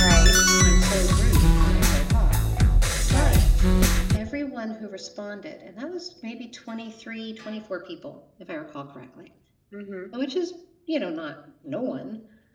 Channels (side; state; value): both; identical; correlation 1.00